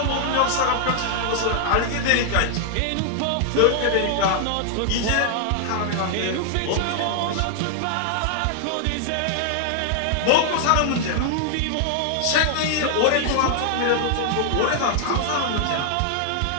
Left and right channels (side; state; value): both; different; correlation 0.00